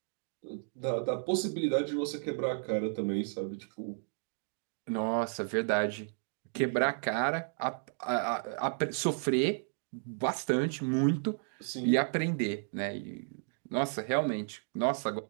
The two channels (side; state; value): left; silent; digital silence